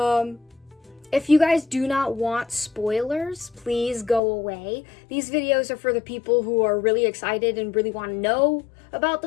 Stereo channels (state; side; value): drops out; right; at 4.2 s